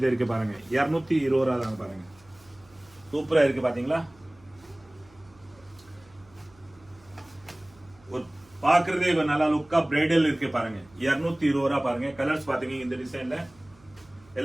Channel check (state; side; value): noise; right; hum, 28 dB below the sound